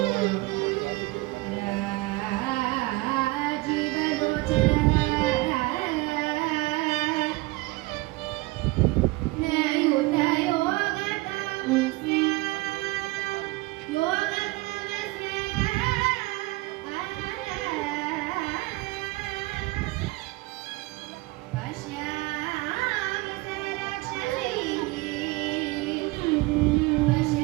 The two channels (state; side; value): quieter; left; 21.9 dB